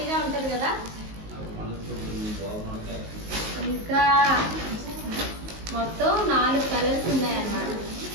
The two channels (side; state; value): left; late; 19 ms